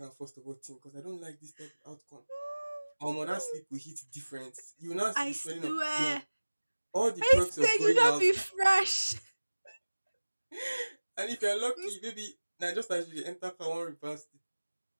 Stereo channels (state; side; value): inverted; both; correlation -1.00